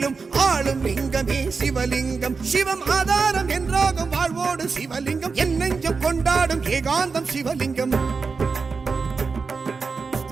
ஆளும் லிங்கமே சிவலிங்கம் சிவம் ஆதாரம் என்றாகும் வாழ்வோடு சிவலிங்கம் என் நெஞ்சம் கொண்டாடும் ஏகாந்தம் சிவலிங்கம்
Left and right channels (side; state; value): left; quieter; 4.8 dB